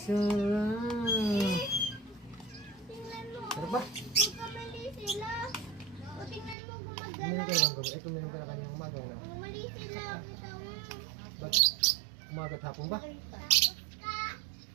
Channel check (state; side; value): drops out; left; at 6.6 s